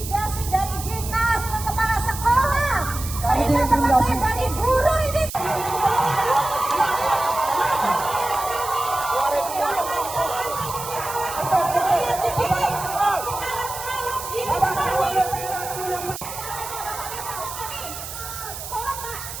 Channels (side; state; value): right; noise; hiss, 9 dB below the sound